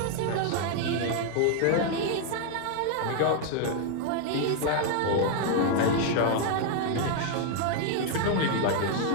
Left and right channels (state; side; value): different; both; correlation 0.00